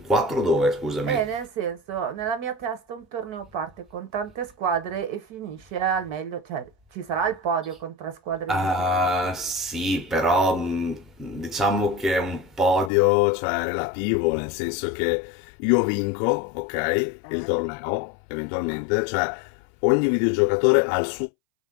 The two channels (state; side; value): drops out; right; at 12.9 s